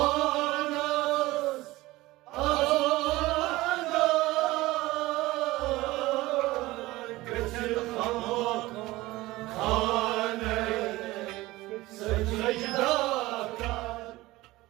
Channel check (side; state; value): left; quieter; 19.0 dB